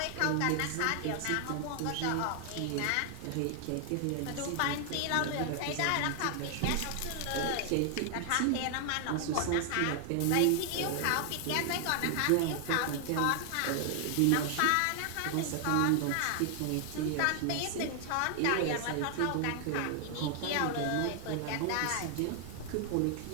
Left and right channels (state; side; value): different; both; correlation 0.00